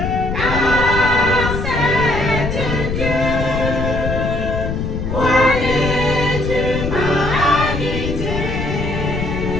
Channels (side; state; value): left; noise; rumble, 3 dB below the sound